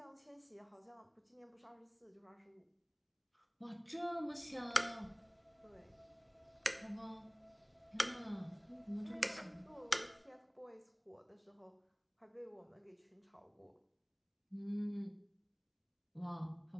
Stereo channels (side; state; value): both; identical; correlation 1.00